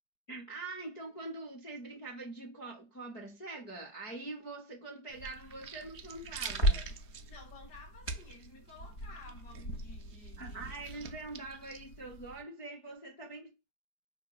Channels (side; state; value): right; late; 4.9 ms